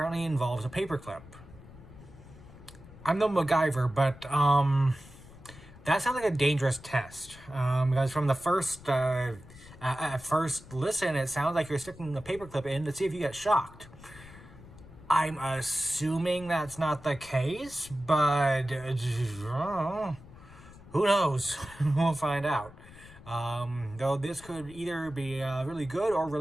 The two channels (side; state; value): left; noise; rumble, 19 dB below the sound